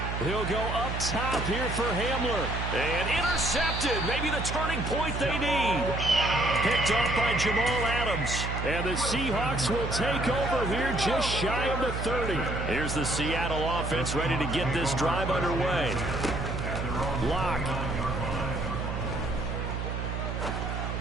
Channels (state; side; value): noise; right; hum, 3 dB below the sound